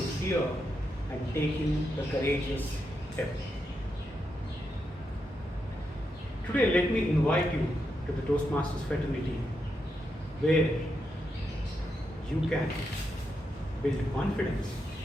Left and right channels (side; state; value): both; normal; correlation 0.84